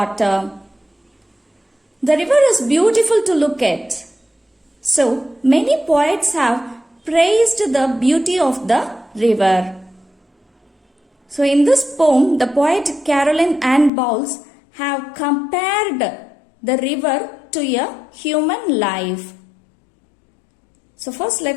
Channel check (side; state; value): right; drops out; at 13.9 s